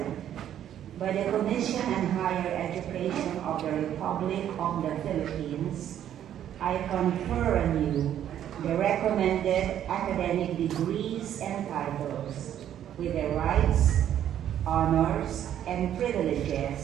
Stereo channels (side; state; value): left; quieter; 10.6 dB